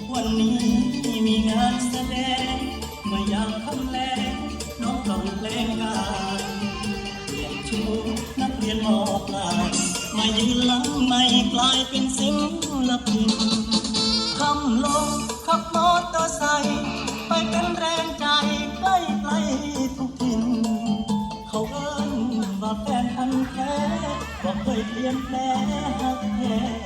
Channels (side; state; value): both; identical; correlation 1.00